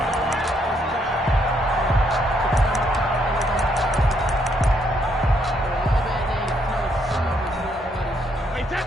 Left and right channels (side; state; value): both; normal; correlation 0.73